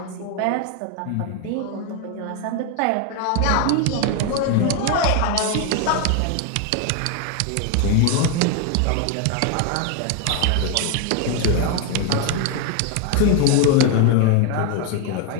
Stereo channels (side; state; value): both; different; correlation 0.01